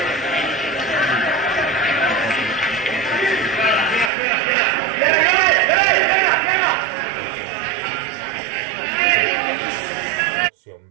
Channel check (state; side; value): drops out; left; at 4.1 s